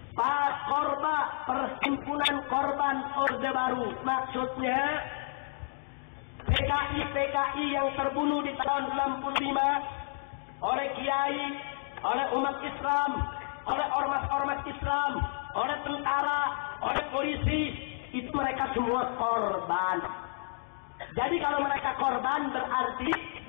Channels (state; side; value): silent; right; digital silence